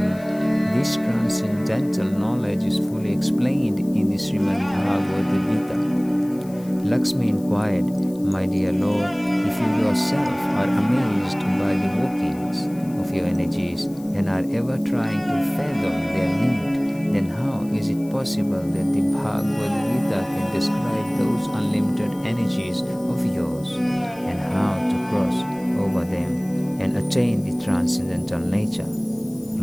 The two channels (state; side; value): noise; left; hiss, 23 dB below the sound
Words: This transcendental knowledge is fully explained in the Srimad Bhagavad Gita." Lakshmi inquired, "My dear Lord, if you yourself are amazed by the workings of your energies and are ever trying to fathom their limit, then how is it possible that the Bhagavad Gita can describe those unlimited energies of yours and how to cross over them and attain the transcendental nature?"